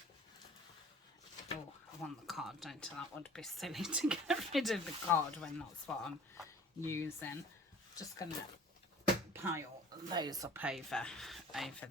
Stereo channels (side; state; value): both; normal; correlation 0.46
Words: I want the card, don't I? That would be silly to get rid of the card when that's what I'm using. Just gonna pile those up over